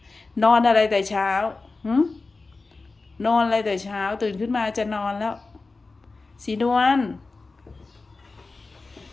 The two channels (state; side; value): quieter; right; 3.7 dB